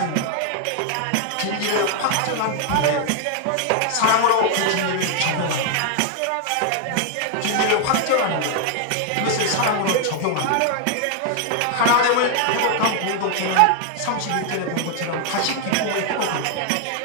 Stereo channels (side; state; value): both; different; correlation 0.00